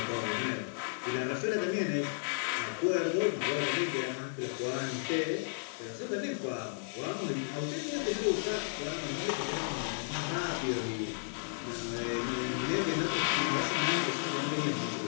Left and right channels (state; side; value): silent; right; digital silence